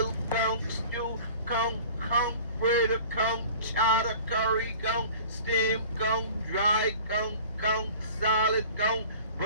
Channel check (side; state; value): both; inverted; correlation -0.44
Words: conch, stew conch, conch, burger conch, chowder curry conch, steamed conch, dry conch, conch, salad conch,